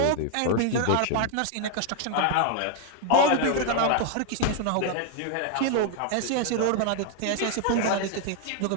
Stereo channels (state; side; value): different; both; correlation 0.00